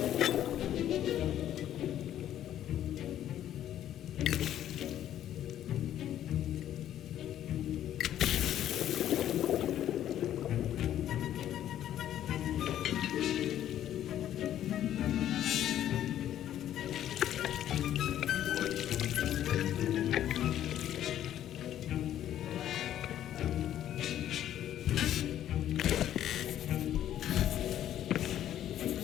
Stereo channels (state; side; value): quieter; right; 11.5 dB